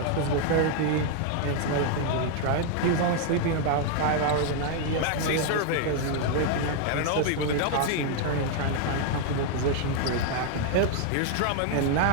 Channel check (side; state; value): both; different; correlation 0.00